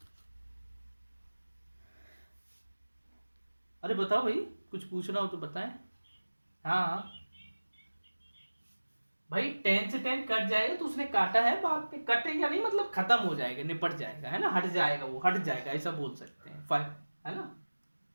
अरे बताओ भाई, कुछ पूछना हो तो बताएं। हाँ हाँ। भाई 10 से 10 कट जाएगा तो उसने काटा है, बाद में कटेगा नहीं, मतलब खत्म हो जाएगा, निपट जाएगा, है ना, हट जाएगा, वो हट जाएगा, ऐसा बोल सकते हैं, फाइव, है ना।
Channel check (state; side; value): inverted; both; correlation -1.00